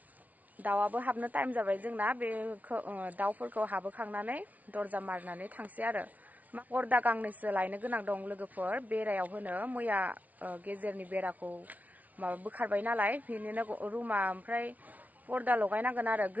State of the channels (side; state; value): left; late; 0.073 ms